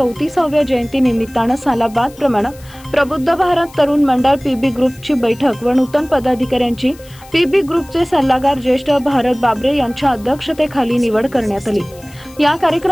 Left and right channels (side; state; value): left; noise; hiss, 24 dB below the sound